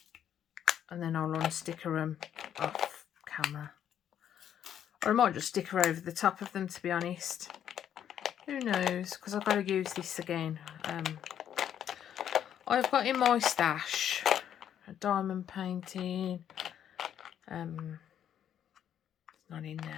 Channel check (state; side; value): quieter; right; 9.7 dB